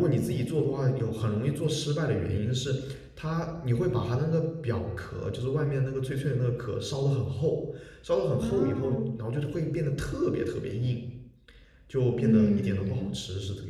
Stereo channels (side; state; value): both; identical; correlation 1.00